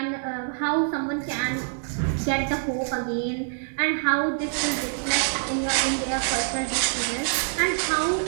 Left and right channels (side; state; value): left; silent; digital silence